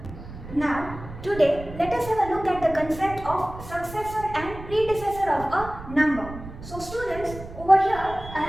Now today, let us have a look at the concept of successor and predecessor of a number. So students, over here I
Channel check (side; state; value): right; noise; rumble, 13 dB below the sound